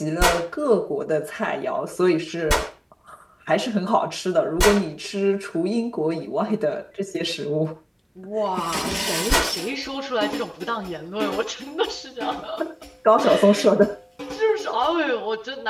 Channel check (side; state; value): both; identical; correlation 1.00